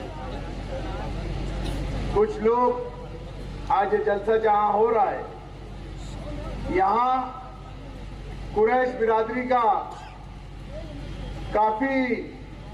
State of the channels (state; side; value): identical; both; correlation 1.00